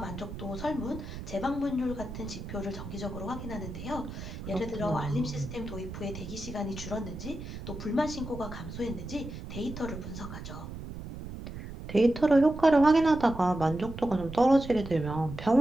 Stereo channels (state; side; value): noise; right; rumble, 10 dB below the sound